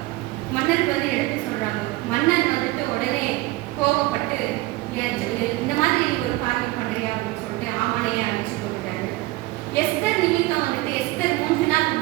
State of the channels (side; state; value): left; quieter; 19.5 dB